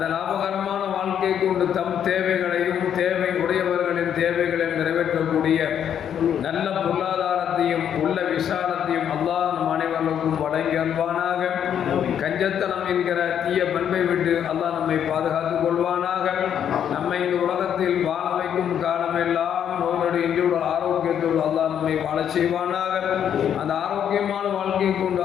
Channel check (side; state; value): right; quieter; 9.1 dB